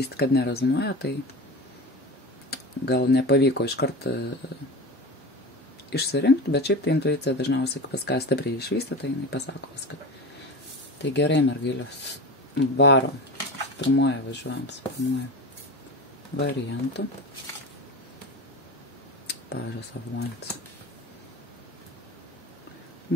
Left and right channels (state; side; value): normal; both; correlation 0.28